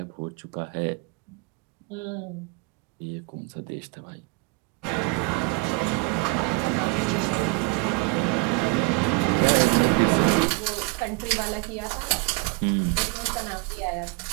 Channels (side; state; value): left; quieter; 27.6 dB